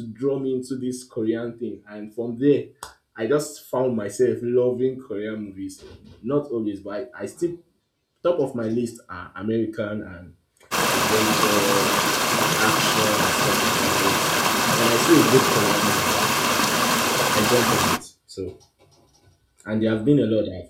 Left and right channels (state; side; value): identical; both; correlation 1.00